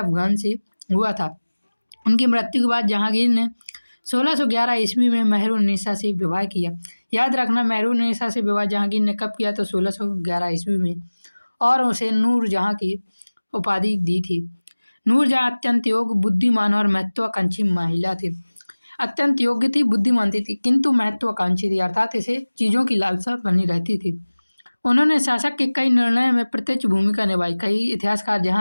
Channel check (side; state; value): both; inverted; correlation -1.00